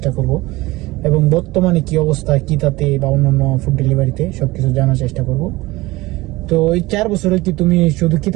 করব এবং বর্তমানে কি অবস্থা কিতাতে বা অন্যান্য ফুড ডেলিভারিতে সবকিছু জানার চেষ্টা করব। তো এই 4 বছরে কি তুমি শুধু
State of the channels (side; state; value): left; quieter; 20.3 dB